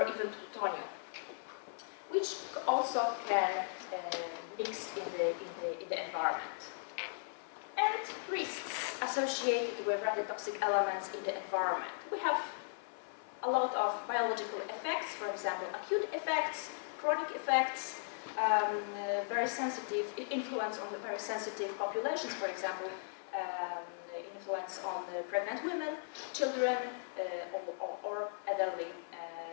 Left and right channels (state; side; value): silent; right; 53 dB below the other